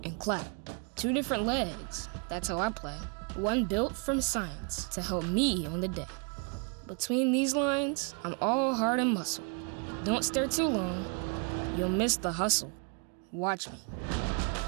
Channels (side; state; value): left; quieter; 38.1 dB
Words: and clap. 2 different legs, that's how I play. One built from science to help me on the day. Between these lines, I'm all heart and muscle. Don't stare too long, you'll miss the hustle. Watch me.